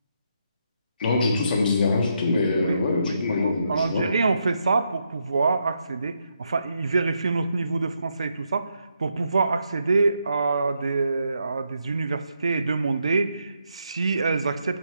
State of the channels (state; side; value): inverted; both; correlation -0.80